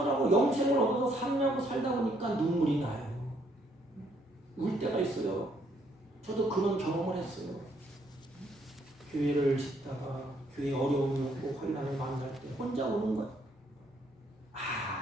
영생을 얻어서 살려고 살다 보니까 눈물이 나요. 울 때가 있어요. 저도 그런 경험을 했어요. 교회를 짓다가 교회 어려움이 오고 환난을 만날 때 혼자 우는 거예요.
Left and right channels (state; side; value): normal; both; correlation 0.69